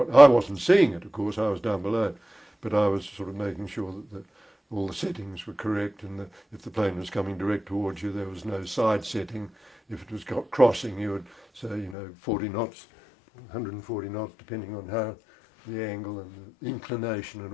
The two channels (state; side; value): drops out; right; at 12.0 s